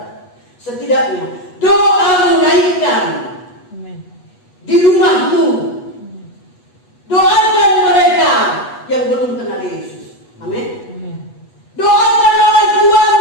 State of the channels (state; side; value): late; right; 8.2 ms